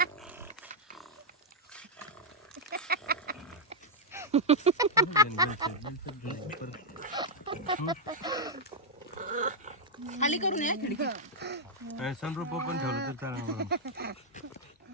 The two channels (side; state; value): both; normal; correlation -0.03